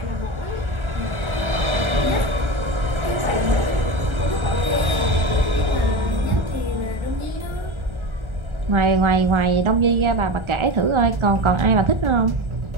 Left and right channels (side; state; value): left; late; 1.4 ms